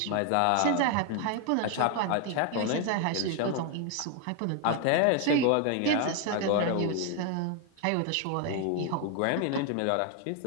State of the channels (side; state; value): both; different; correlation 0.00